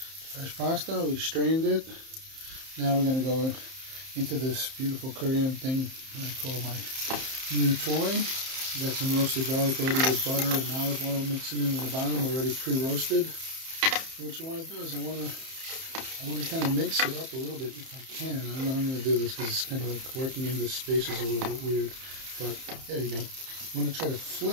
pasta, we strained it. Now we're going to go into this beautiful Korean thing that I call my new toy. Got some roasted garlic already with butter and olive oil mixing in the bottom, already pre-roasted. What you want to do is I want to kind of mix it up a little bit if I can. I don't know how I'm going to do this because it's kind of like working in this space is a little bit weird. But there you go. I'm going to try to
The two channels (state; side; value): late; left; 30 ms